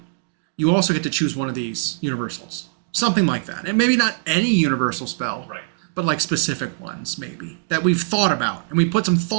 you also get to choose one of these universals. Something like that. And maybe not any universal spell. Right. But like specific ones, maybe, that we've thought about. And we put some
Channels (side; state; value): left; silent; digital silence